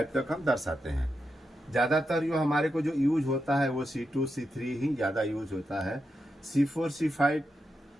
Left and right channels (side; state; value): both; normal; correlation 0.86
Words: तक हम दर्शाते हैं। ज़्यादातर जो हमारे को जो यूज होता है वो C2, C3 ही ज़्यादा यूज होता है। C4, C5